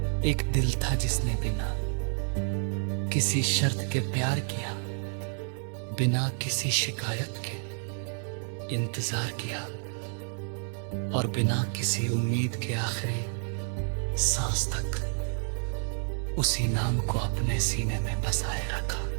एक दिल था जिसने बिना किसी शर्त के प्यार किया, बिना किसी शिकायत के इंतजार किया, और बिना किसी उम्मीद के आखिरी सांस तक उसी नाम को अपने सीने में बसाए रखा।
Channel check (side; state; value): left; silent; 58 dB below the other